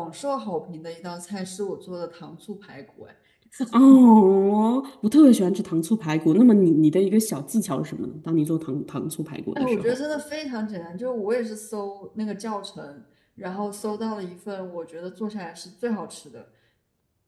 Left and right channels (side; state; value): both; identical; correlation 1.00